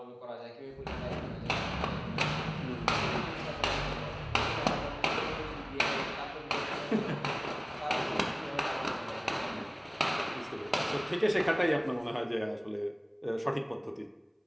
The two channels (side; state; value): both; identical; correlation 1.00